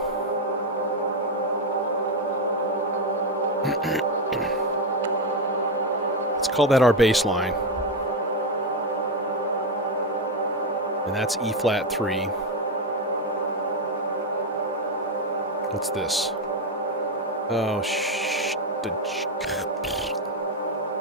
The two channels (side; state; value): both; normal; correlation 0.08